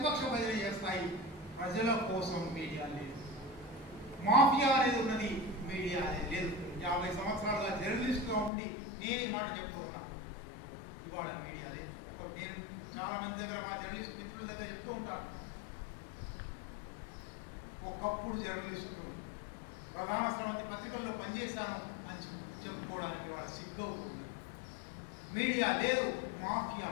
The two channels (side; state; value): right; drops out; at 8.5 s